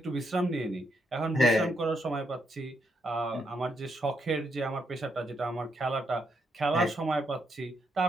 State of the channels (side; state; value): both; normal; correlation 0.78